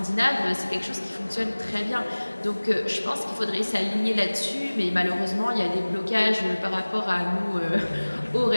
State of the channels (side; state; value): both; inverted; correlation -1.00